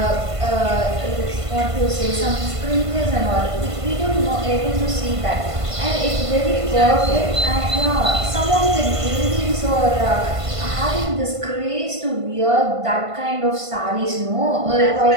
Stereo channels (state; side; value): late; left; 1.5 ms